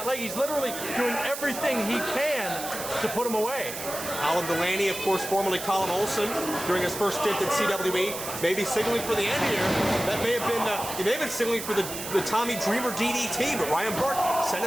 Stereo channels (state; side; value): noise; right; hiss, 8 dB below the sound